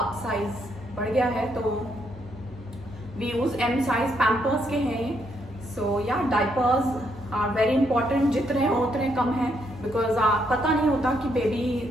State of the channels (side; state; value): both; normal; correlation 0.75